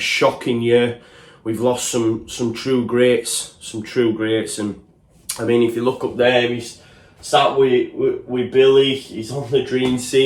year. We've lost some true greats, and I mean, if you look up there, he's sat with Billy. He's on the dream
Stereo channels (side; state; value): both; identical; correlation 1.00